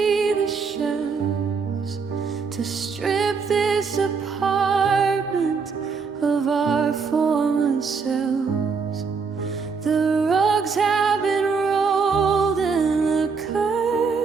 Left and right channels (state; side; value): quieter; left; 5.3 dB